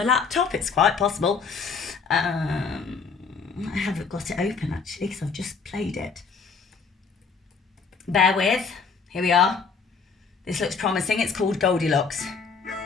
laptop? It's quite possible. I haven't got it open actually because I've just played it. Bear with. Here we are. This looks promising. It's called Goldilocks.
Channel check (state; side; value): quieter; right; 5.3 dB